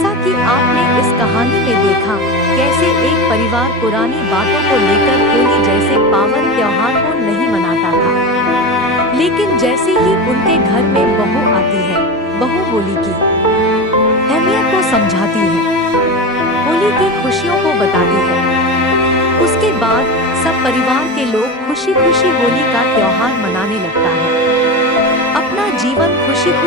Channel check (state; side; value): normal; both; correlation 0.23